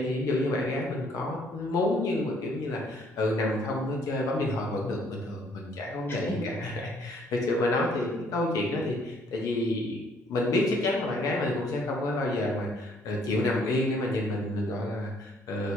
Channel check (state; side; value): normal; both; correlation 0.64